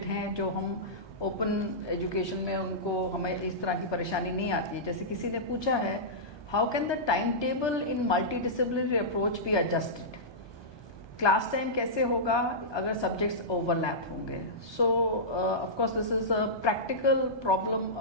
हैं, जो हम ओपन एजुकेशन में उनको हमें इस तरह की परेशानी नहीं आती है। जैसे किसी ने पूछा है, how can the time table in multi disciplinary approach be adjusted? Class time कैसे होगा अगर सब्जेक्ट्स ओवरलैप होंगे? So of course this is a practical problem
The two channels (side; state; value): right; late; 1.2 ms